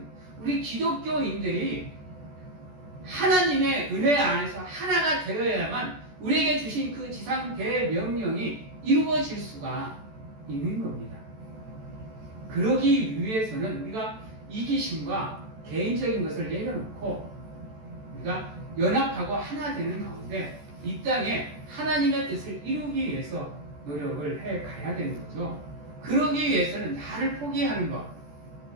우리 기독교인들이 하나님의 은혜 안에서 하나가 되어야만 우리에게 주신 그 지상 대명령이 이루어질 수가 있는 겁니다. 그러기 위해서는 우리가 이기심과 개인적인 것을 내려놓고 우리가 연합하고 하나 되는 가운데 이 땅에 하나님의 뜻을 이루기 위해서 노력을 해 가야 되는 거죠. 그러기 위해서는 나를 포기하는 것,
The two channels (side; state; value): left; late; 14 ms